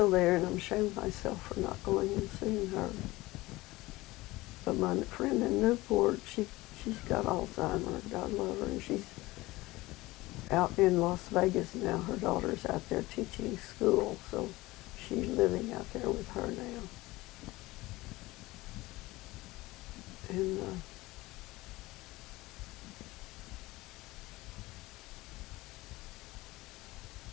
there, and I'm ashamed of myself for not going and seeing her. But my friend in Newport, she's got Alzheimer's, God love her, and she's out in Las Vegas now. Her daughter's out there teaching school, so she's living out there with her now. And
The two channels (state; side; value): quieter; right; 19.9 dB